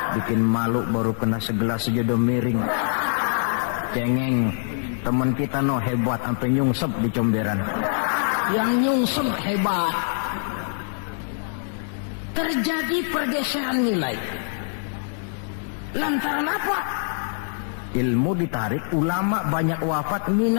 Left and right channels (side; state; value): right; silent; digital silence